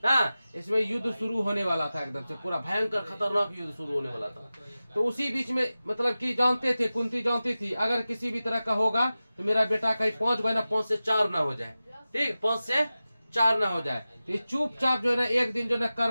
हाँ, इसमें युद्ध शुरू होने वाला था, एकदम से पूरा भयंकर खतरनाक युद्ध शुरू होने वाला था। तो उसी बीच में मतलब कि जानते थे, कुंती जानती थी अगर किसी भी तरह का होगा तो मेरा बेटा कहीं 5 बना 5 से 4 ना हो जाए। ठीक, 5 से 4 ना हो जाए। तो ये चुपचाप जो है ना एक दिन जो है ना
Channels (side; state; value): both; inverted; correlation -0.95